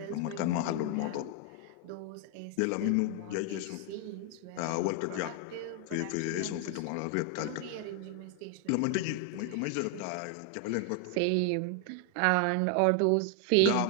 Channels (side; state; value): both; different; correlation 0.00